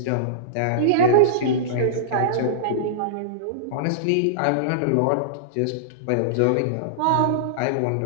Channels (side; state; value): both; different; correlation -0.03